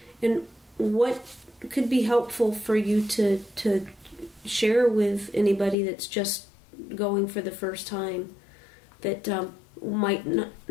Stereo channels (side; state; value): right; drops out; at 5.8 s